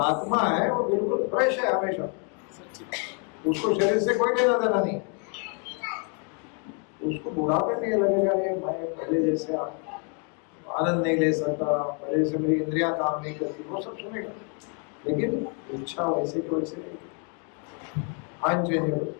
है वो बिल्कुल फ्रेश है हमेशा, उसको शरीर से कोई लेना देना नहीं, उसको बुढ़ापे नहीं लगेगा ये मैं पहले जैसे आनंद नहीं ले सकता, पहले से मेरी इंद्रियां काम नहीं करती, वो सब सुनेगा, लेकिन इच्छा वैसे की वैसे नहीं। अनचेंजेबल,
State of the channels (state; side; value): quieter; right; 39.0 dB